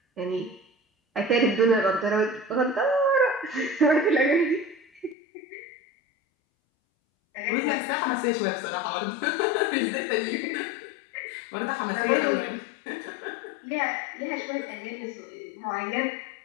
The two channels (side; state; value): right; drops out; at 5.2 s